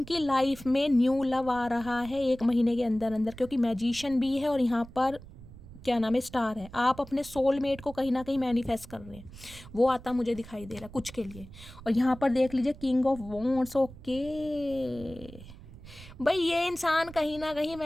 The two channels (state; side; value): noise; right; rumble, 17 dB below the sound